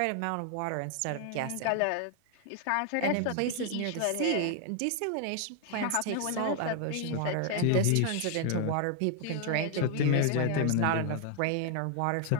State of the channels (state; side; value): different; both; correlation 0.00